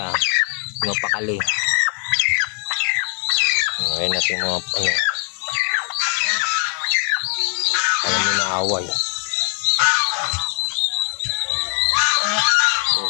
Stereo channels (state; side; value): quieter; right; 39.3 dB